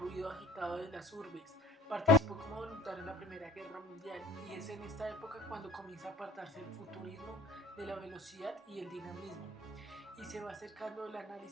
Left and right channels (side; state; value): both; normal; correlation 0.46